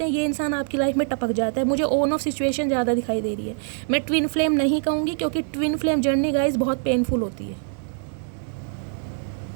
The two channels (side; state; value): left; silent; 63 dB below the other